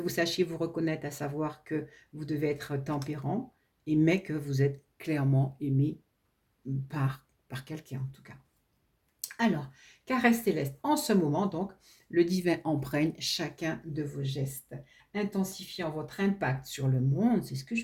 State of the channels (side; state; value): both; identical; correlation 1.00